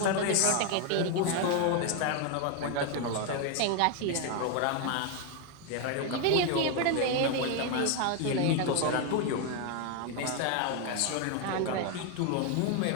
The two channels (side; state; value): both; different; correlation 0.01